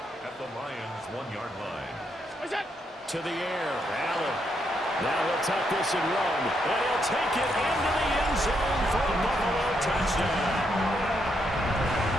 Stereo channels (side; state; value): both; normal; correlation 0.78